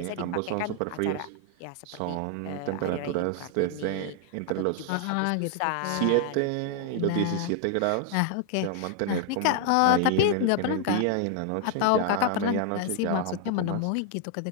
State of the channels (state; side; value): different; both; correlation 0.00